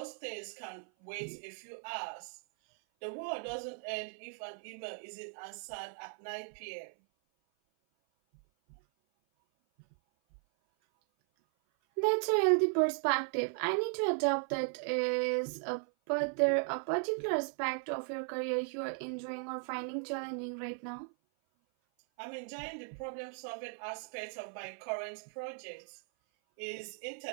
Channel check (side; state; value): left; silent; 53 dB below the other